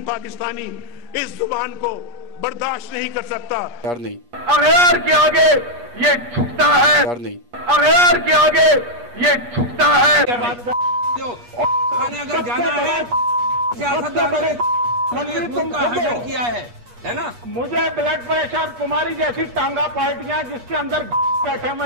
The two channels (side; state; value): left; late; 8.4 ms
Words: पाकिस्तानी इस जुबान को बर्दाश्त नहीं कर सकता। यार नहीं, अगैर के आगे ये झुकता है। यार नहीं, अगैर के आगे ये झुकता है। अगर जाना है किया है ना। मुझे ब्लड प्रेशर, तुम्हारी जैसी टांगा पार्टियां जिसके अंदर बैठे